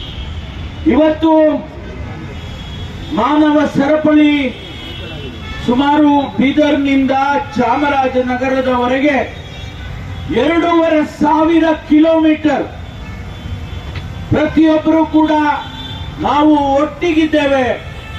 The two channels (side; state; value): both; identical; correlation 1.00